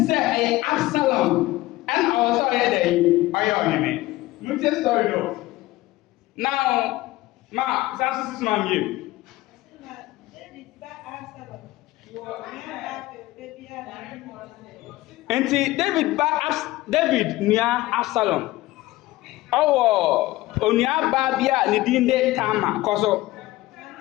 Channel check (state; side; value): quieter; right; 18.0 dB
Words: say Absalom and also there ayoneme. No tell story no. Now ma sasu sis ma mie. Enti David nia Absalom. Owo onua ba bia ne din de Tama koso.